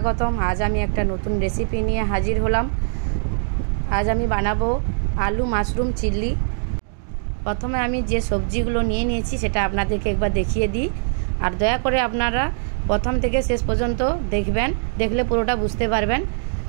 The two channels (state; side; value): silent; left; digital silence